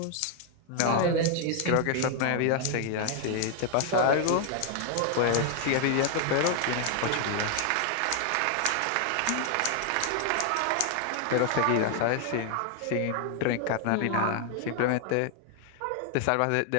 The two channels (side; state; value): both; different; correlation 0.00